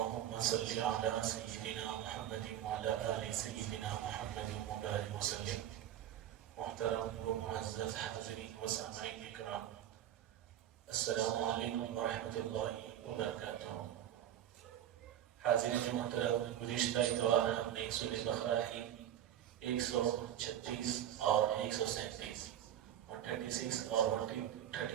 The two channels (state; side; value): quieter; left; 11.2 dB